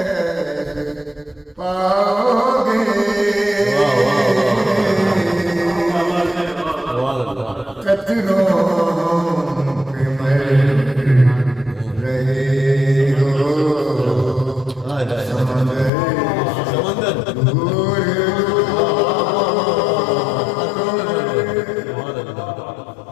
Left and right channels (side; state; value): right; drops out; at 15.9 s